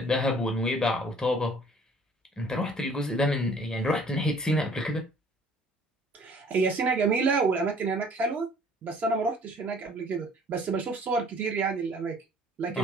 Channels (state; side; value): normal; both; correlation 0.54